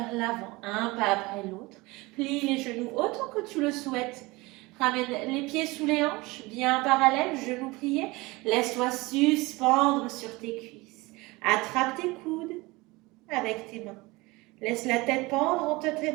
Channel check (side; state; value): left; quieter; 22.8 dB